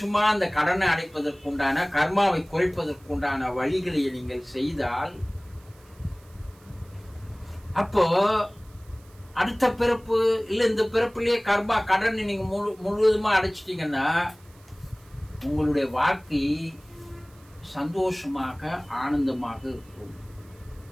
அந்த கடனை அடைப்பதற்குண்டான, கர்மாவை குறைப்பதற்குண்டான வழிகளை நீங்கள் செய்தால், அப்போ அடுத்த பிறப்பு இல்ல இந்த பிறப்புலயே கர்மா கடனை நீங்க முழுவதுமா அடைச்சிட்டீங்கன்னா உங்களுடைய வாழ்க்கை சந்தோஷமாக ஆனந்தமாக இருக்கும்.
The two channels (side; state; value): right; noise; hiss, 28 dB below the sound